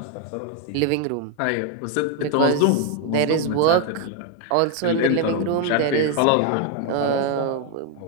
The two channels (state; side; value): different; both; correlation 0.01